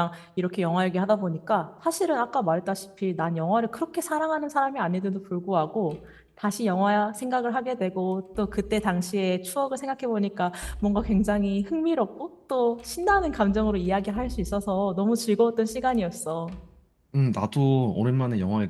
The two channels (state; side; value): identical; both; correlation 1.00